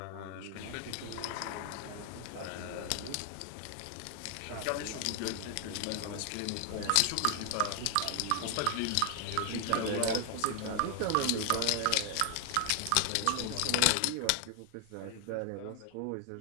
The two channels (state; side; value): different; both; correlation 0.00